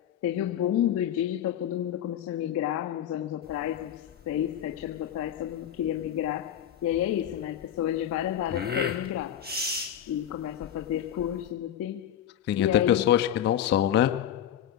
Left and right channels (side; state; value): right; quieter; 10.4 dB